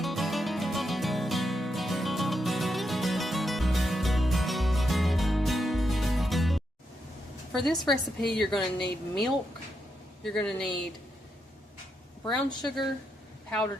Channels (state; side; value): normal; both; correlation 0.83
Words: For this recipe, you're going to need milk, you're going to need brown sugar,